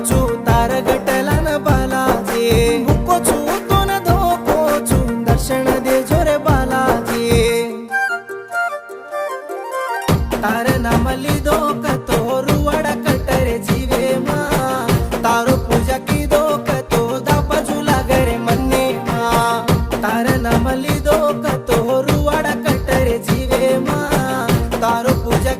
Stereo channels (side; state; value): both; identical; correlation 1.00